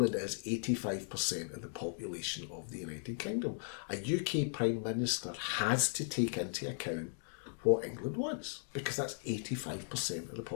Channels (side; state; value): right; silent; digital silence